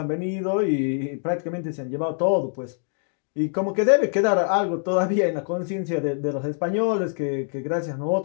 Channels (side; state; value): right; silent; 61 dB below the other